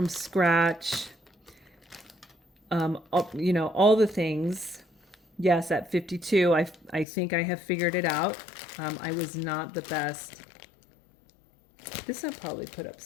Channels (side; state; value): right; drops out; at 7.1 s